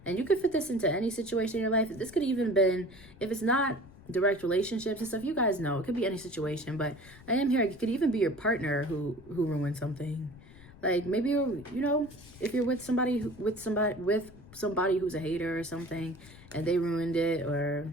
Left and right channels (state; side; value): noise; left; rumble, 21 dB below the sound